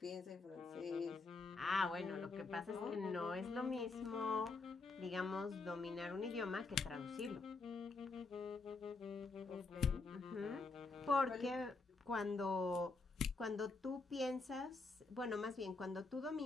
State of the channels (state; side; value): quieter; right; 3.9 dB